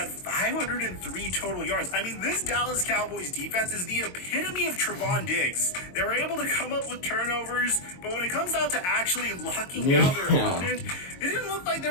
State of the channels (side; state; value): right; late; 22 ms